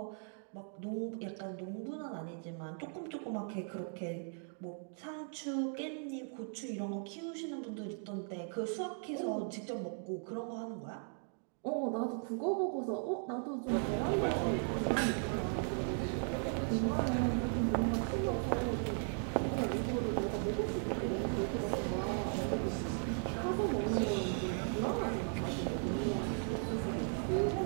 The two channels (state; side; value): silent; left; 53 dB below the other